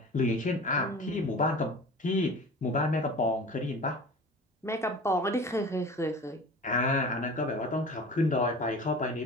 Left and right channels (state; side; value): normal; both; correlation 0.39